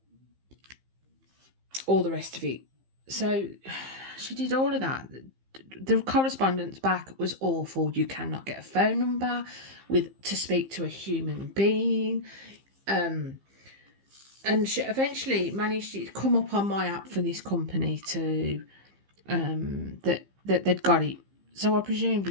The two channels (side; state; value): left; late; 15 ms